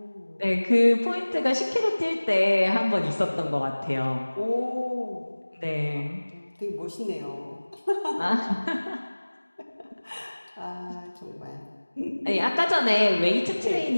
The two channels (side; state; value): both; inverted; correlation -1.00